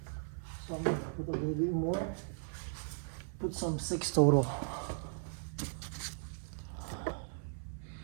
So I'm gonna put a little bit more. Put some 6 total.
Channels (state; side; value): silent; left; 53 dB below the other